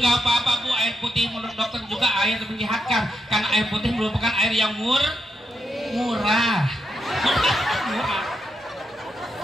apa-apa bu, air putih menurut dokter juga air menyehatkan, karena air putih merupakan air yang murah.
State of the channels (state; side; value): normal; both; correlation 0.83